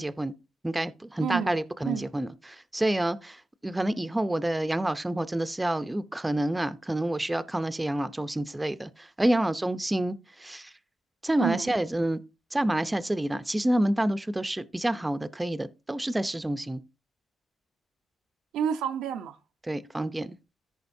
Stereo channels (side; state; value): both; normal; correlation 0.95